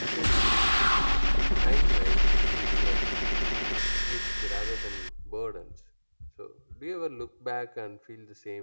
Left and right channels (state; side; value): inverted; both; correlation -1.00